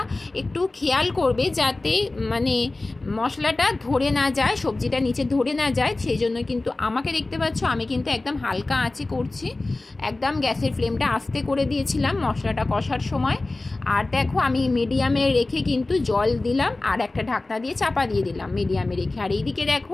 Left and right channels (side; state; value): right; quieter; 3.1 dB